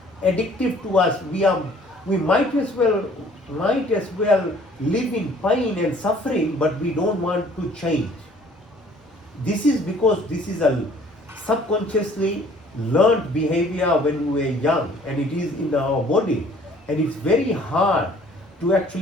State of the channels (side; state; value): both; normal; correlation 0.55